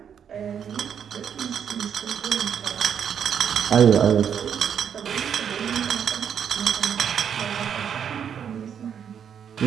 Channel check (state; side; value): quieter; left; 8.1 dB